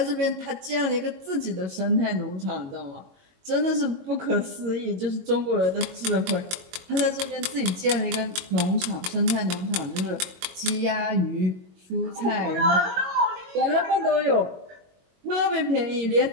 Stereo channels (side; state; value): left; late; 22 ms